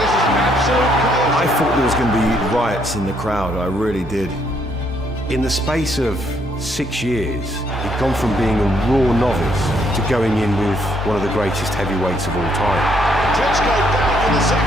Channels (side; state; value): both; normal; correlation 0.71